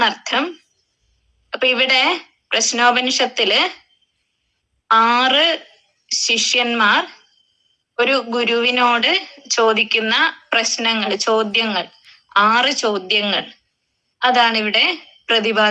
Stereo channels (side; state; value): both; identical; correlation 1.00